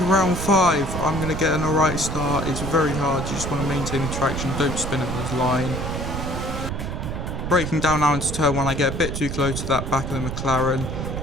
round 5. I'm going to get an alright start. It's very hard, you just want to maintain the traction, don't spin at this line. Braking down now into turn 1, I get a bit too close to that back of the McLaren.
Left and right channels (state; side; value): noise; right; rumble, 4 dB below the sound